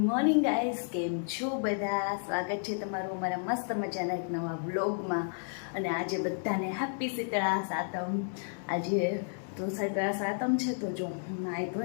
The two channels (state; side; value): silent; right; digital silence